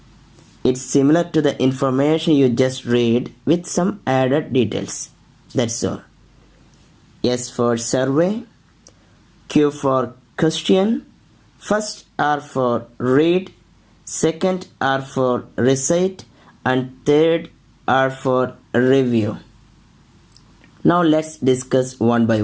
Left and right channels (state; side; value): identical; both; correlation 1.00